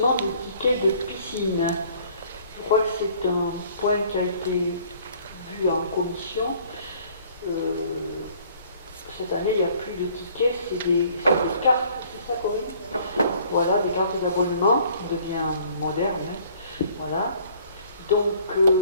des tickets de piscine. Je crois que c'est un point qui a été vu en commission. Cette année, il n'y a plus de tickets, c'est des cartes, c'est ça Corinne? Voilà, des cartes d'abonnement, qui devient moderne. Hein. Voilà. Donc,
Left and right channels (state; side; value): inverted; both; correlation -0.57